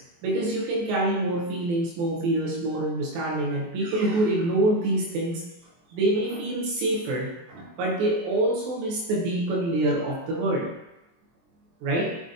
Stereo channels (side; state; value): left; late; 23 ms